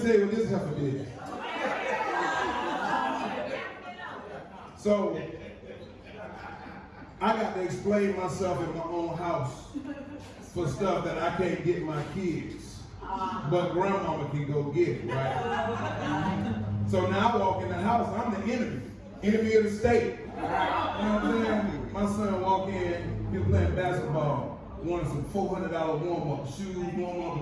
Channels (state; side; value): identical; both; correlation 1.00